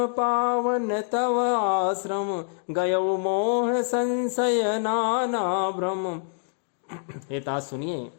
पावन तव आश्रम, गयउ मोह संशय नाना भ्रम। हे तात सुनिए,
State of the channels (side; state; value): right; silent; 61 dB below the other